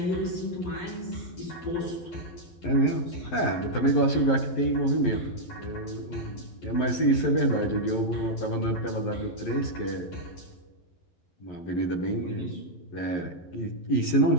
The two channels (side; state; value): right; late; 11 ms